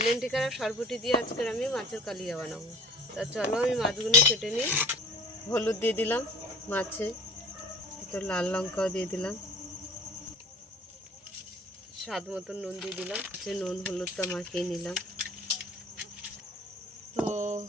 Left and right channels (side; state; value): both; normal; correlation 0.43